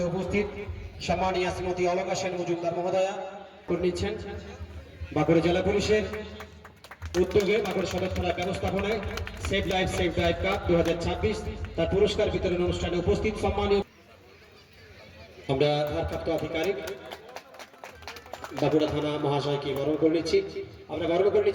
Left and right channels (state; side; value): identical; both; correlation 1.00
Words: উপস্থিত সম্মানীয় শ্রীমতী অলকা সেন মজুমদার মহোদয়া করে নিচ্ছেন। বাঁকুড়া জেলা পুলিশের উদ্যোগে বাঁকুড়া সদর থানার ব্যবস্থাপনায় save life save drive cup 2026 তার পুরস্কার বিতরণ অনুষ্ঠানে উপস্থিত সম্মানীয় আমরা ভারপ্রাপ্ত আধিকারিক বাঁকুড়া থানা মহাশয়কে বরণ করে নিচ্ছি। আমরা বরণ করে